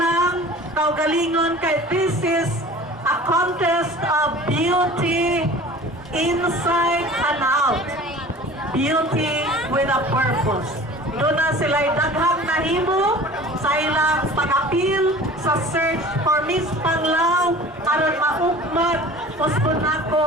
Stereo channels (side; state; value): both; normal; correlation 0.43